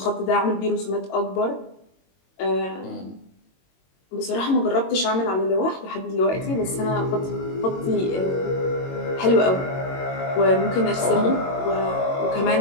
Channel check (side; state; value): right; late; 22 ms